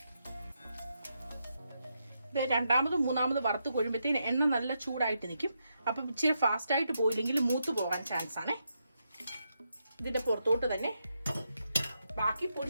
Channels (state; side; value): inverted; both; correlation -0.83